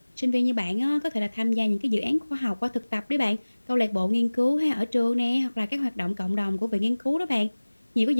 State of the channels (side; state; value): both; inverted; correlation -1.00